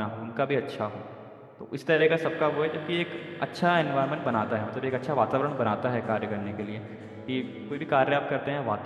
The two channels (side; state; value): both; identical; correlation 1.00